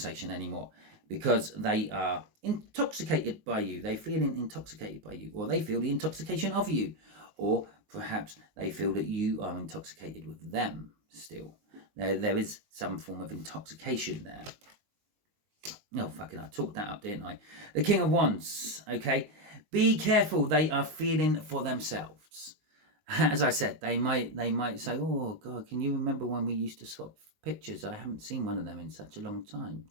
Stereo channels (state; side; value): late; left; 19 ms